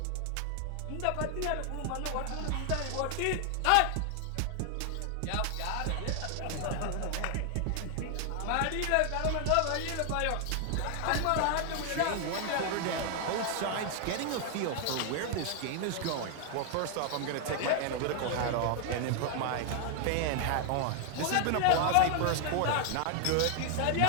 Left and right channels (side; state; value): both; different; correlation 0.00